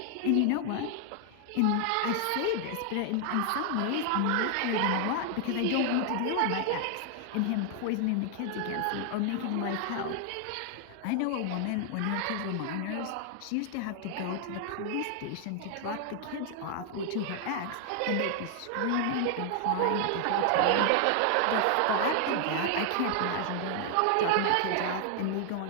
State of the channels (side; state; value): both; different; correlation 0.00